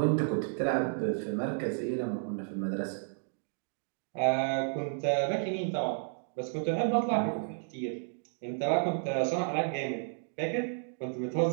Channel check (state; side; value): silent; left; digital silence